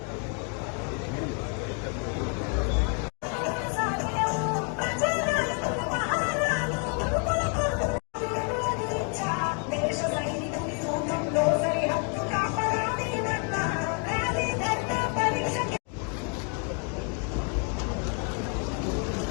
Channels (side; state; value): right; quieter; 38.0 dB